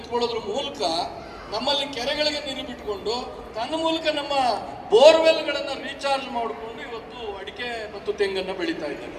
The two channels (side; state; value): both; identical; correlation 1.00